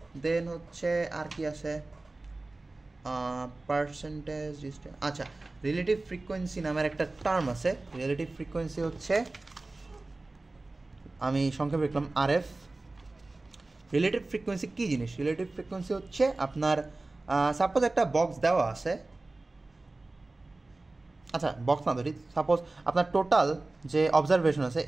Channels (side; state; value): left; quieter; 3.1 dB